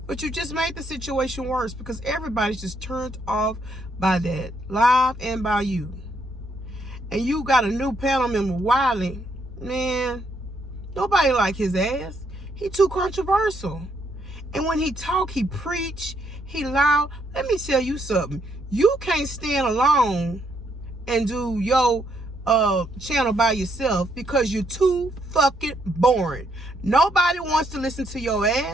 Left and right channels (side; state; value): both; normal; correlation 0.74